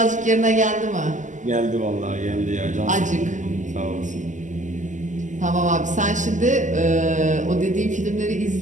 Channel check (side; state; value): left; late; 0.36 ms